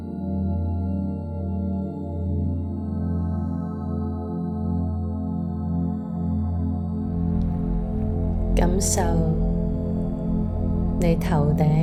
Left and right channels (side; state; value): both; identical; correlation 1.00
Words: 感受你頭